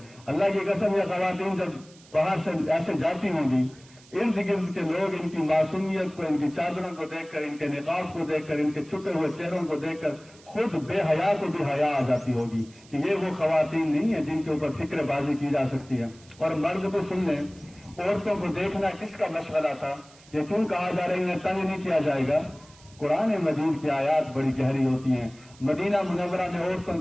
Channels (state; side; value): noise; right; hiss, 25 dB below the sound